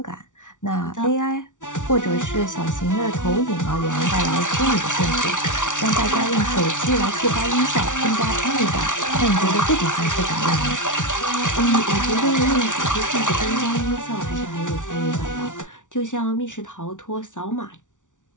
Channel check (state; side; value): late; right; 0.87 ms